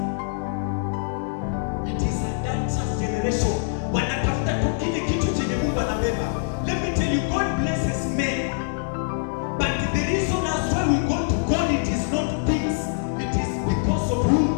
It is adulterous generation. Wanatafuta tu kile kitu chenye Mungu anabeba. Let me tell you, God blesses men, but the reason as why we go to God, it is not things, it is because of who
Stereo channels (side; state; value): right; silent; digital silence